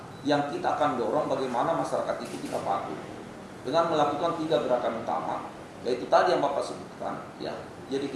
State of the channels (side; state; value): both; identical; correlation 1.00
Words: yang kita akan dorong bagaimana masyarakat itu kita patuh dengan melakukan 3 gerakan utama, yaitu tadi yang Bapak sebutkan, ya. Jadi